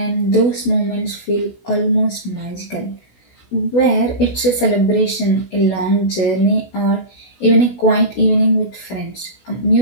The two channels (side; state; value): right; late; 17 ms